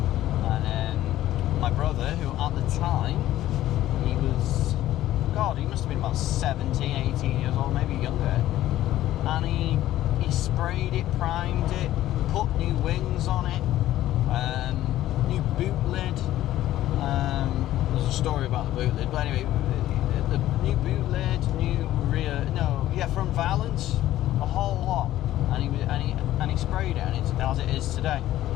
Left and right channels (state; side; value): quieter; right; 14.0 dB